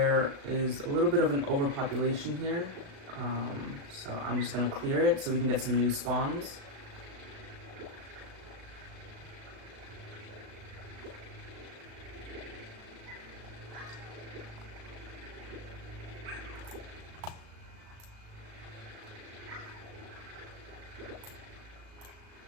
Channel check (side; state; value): left; late; 37 ms